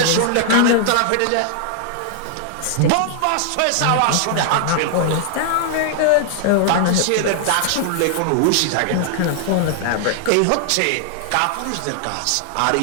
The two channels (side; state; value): both; different; correlation -0.01